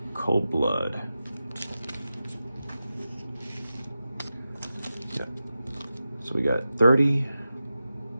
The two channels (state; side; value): inverted; both; correlation -0.92